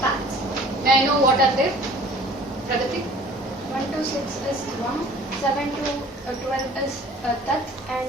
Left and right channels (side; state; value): both; normal; correlation 0.49